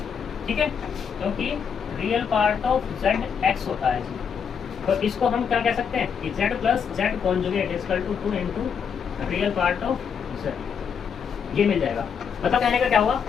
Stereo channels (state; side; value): quieter; right; 7.0 dB